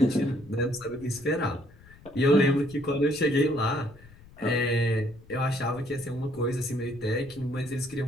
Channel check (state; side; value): noise; left; rumble, 22 dB below the sound